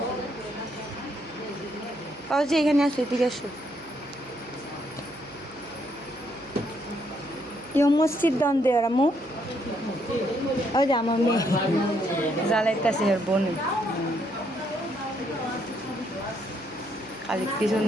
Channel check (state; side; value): noise; right; hum, 23 dB below the sound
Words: পৌঁছে এখানে আসো, এদিকে আসো। ইউ মাস্ট সিট ডাউন দেয়ার আম্মু। ওই যে আমার মেয়ে জ্বালাইতেছে এর বোনে, খালি